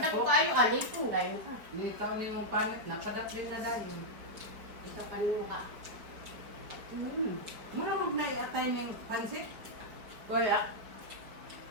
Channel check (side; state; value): left; late; 4.8 ms